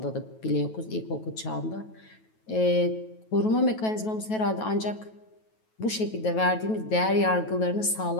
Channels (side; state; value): right; late; 9.2 ms